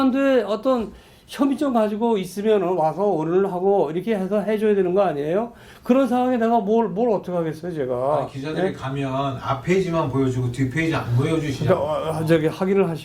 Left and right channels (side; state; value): both; identical; correlation 1.00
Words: 어떤 혐의점 가지고 있으면 와서 오늘 하고 이렇게 해서 해줘야 되는 거 아니에요? 그런 상황에 내가 뭘 어떻게 하겠어요, 제가. 아니, 기자들이 예? 가면 앞 페이지만 보여주고 뒷 페이지 안 보여주시냐고. 저기 확인을